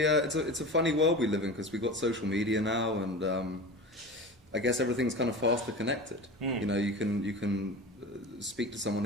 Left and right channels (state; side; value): normal; both; correlation 0.31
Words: a funny world we live in because we've got social media now, and I guess everything's kind of faster connected. You know, you can speak to someone